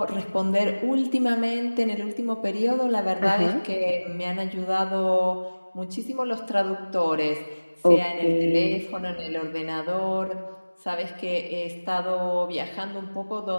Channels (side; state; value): both; inverted; correlation -1.00